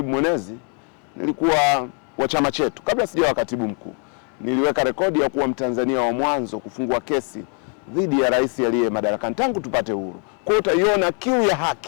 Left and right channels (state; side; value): quieter; right; 37.4 dB